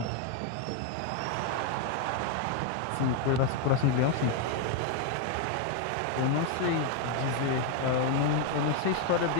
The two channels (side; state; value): both; different; correlation 0.01